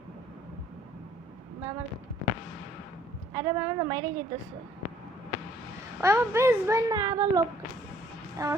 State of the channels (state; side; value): normal; both; correlation 0.60